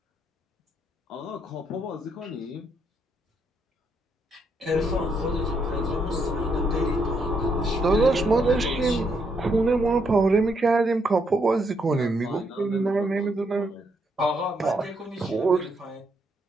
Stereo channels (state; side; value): normal; both; correlation 0.76